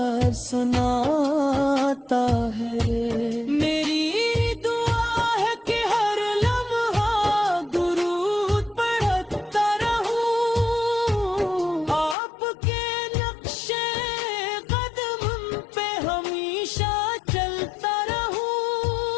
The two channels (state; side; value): drops out; right; at 12.2 s